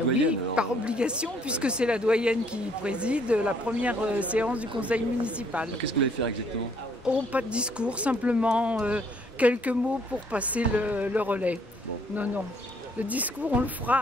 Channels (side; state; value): both; normal; correlation 0.65